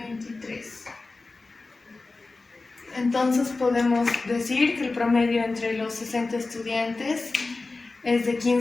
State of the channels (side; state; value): right; quieter; 3.5 dB